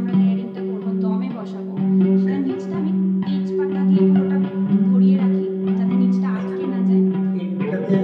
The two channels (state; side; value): identical; both; correlation 1.00